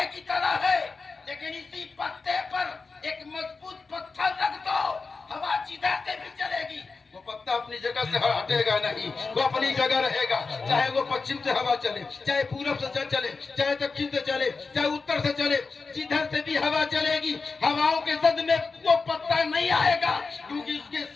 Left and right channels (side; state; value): right; quieter; 4.3 dB